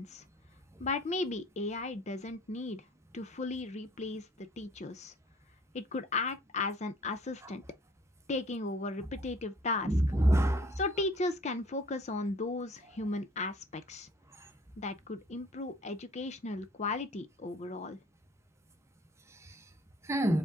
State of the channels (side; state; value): both; normal; correlation 0.54